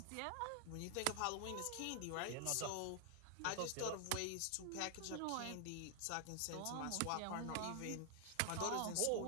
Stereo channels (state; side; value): different; both; correlation 0.00